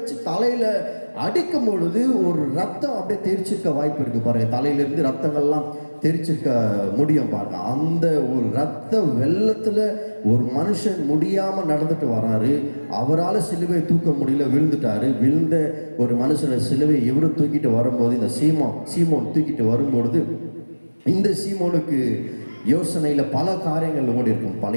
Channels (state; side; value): inverted; both; correlation -1.00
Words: தலையில அடிக்கும் பொழுது ஒரு ரத்தம் அப்படியே தெரிச்சிருக்க வாய்ப்பு இருக்கு பாருங்க. தலையிலிருந்து ரத்தங்கள்லாம் தெரிச்சிருக்க முடியும் பாருங்க. அந்த ஒரு ரத்த வெள்ளத்துல ஒரு மனுஷன் முடியாம நடந்துட்டு வராரு. அவரால் சிலுவை தூக்க முடியல, விழுந்துட்டாரு. விழுந்த ஒரு மனுஷனை சிலுவை இவரு தூக்கிட்டு வரும்போது, இந்த சீமோன் தூக்கிட்டு வரும்பொழுது இந்த சீமோனுக்கு யோசனையில பல காரியங்கள் ஓடி இருக்கும்.